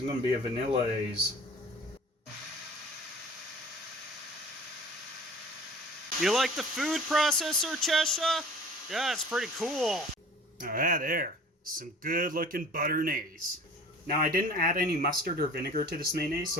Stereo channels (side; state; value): both; normal; correlation 0.45